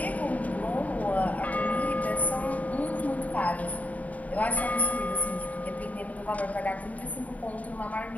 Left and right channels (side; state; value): right; late; 0.072 ms